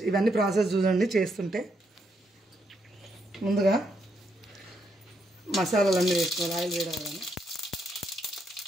ఇవన్నీ ప్రాసెస్ చూడండి చేస్తుంటే. ముందుగా మసాలాలన్నీ వేసుకోవాలి. ఆయిల్ వేయగానే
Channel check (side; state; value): both; normal; correlation 0.77